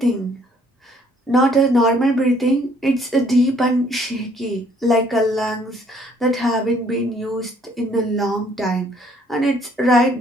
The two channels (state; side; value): normal; both; correlation 0.63